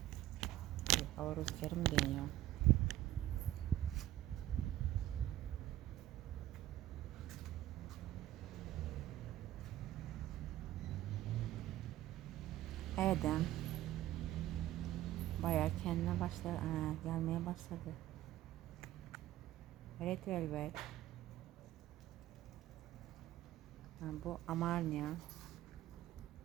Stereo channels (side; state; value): left; quieter; 14.2 dB